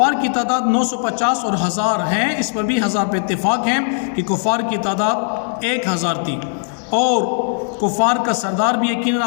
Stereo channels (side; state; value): right; silent; 67 dB below the other